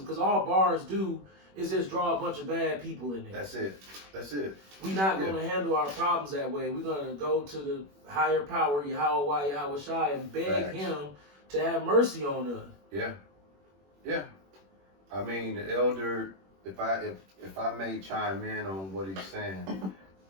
because all bars do is just draw a bunch of bad people in there. That's it. That's it. We're not going to handle our problems that way. We're going to go to the higher power, Yahweh, Yahweh Shai, and beg Facts. him to have mercy on us. Yeah. Yeah. I mean, the elder, if I may chime in on what he's saying,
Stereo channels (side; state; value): left; late; 21 ms